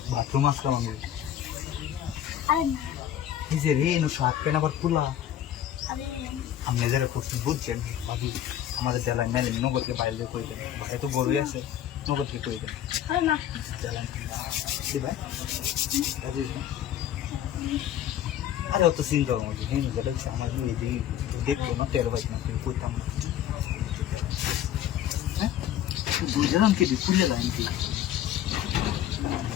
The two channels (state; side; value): quieter; right; 10.9 dB